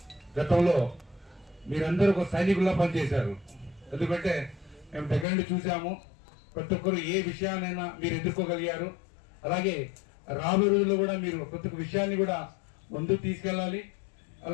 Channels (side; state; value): right; drops out; at 5.2 s